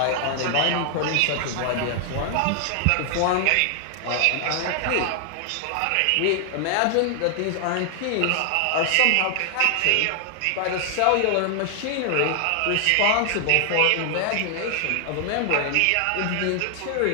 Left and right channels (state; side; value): different; both; correlation 0.00